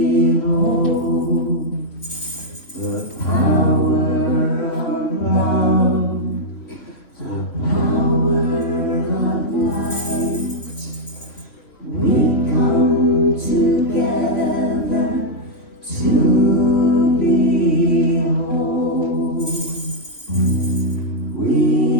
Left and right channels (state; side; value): late; right; 3.1 ms